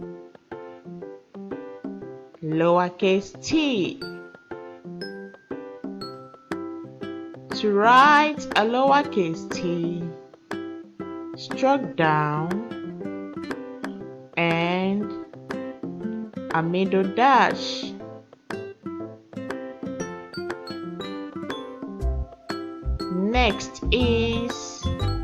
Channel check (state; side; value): identical; both; correlation 1.00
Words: lowercase t. To write a lowercase t, stroke down and a middle dash. Next is